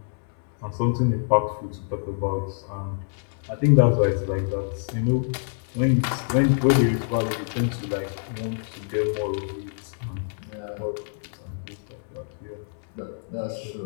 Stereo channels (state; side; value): silent; right; 61 dB below the other